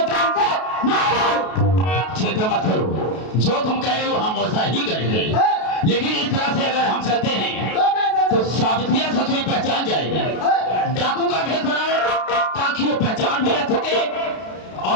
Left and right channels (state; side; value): late; right; 32 ms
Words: जान से मारो। चिंता मत करो, जो तुम कह रहे हो हम वैसा ही करेंगे। लेकिन इस तरह से अगर हम चलते हैं तो सावित्रिया ससुरी पहचान जाएगी। डाकू का भेष बनाओ ताकि वो पहचान भी रख सके